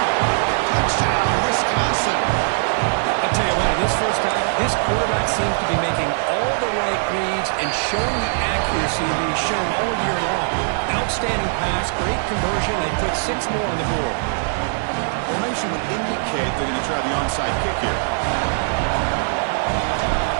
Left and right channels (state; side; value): silent; left; digital silence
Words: Touchdown, Wisconsin. I'll tell you what, in this first half, this quarterback seems to be making all the right reads and showing the accuracy that he's shown all year long. Outstanding pass, great conversion. They put 6 more on the board. Formation would indicate they're going to try the onside kick here.